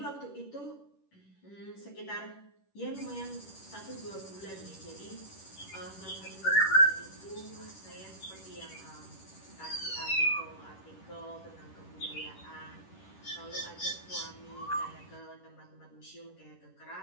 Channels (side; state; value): right; late; 10 ms